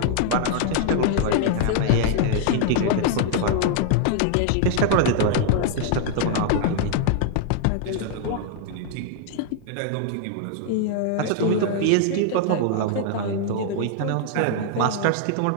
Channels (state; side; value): different; both; correlation 0.00